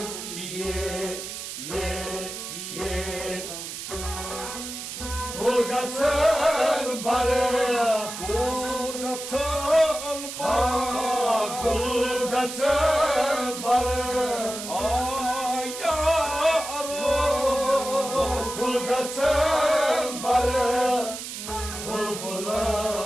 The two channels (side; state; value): right; noise; hiss, 8 dB below the sound